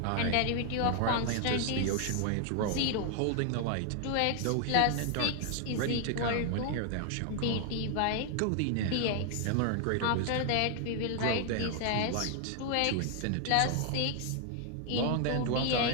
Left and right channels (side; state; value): both; different; correlation 0.00